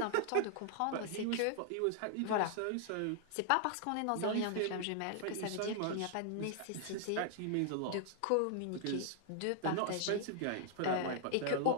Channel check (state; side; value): different; both; correlation 0.00